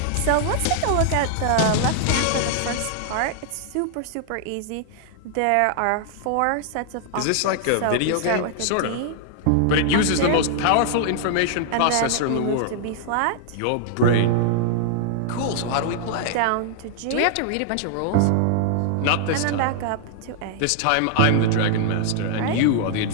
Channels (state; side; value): different; both; correlation 0.00